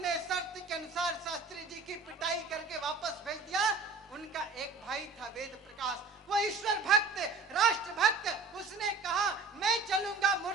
शर्त के अनुसार शास्त्री जी की पिटाई करके वापस भेज दिया। उनका एक भाई था वेद प्रकाश, वो ईश्वर भक्त, राष्ट्र भक्त। उसने कहा, मैं चलूंगा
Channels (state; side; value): quieter; left; 3.9 dB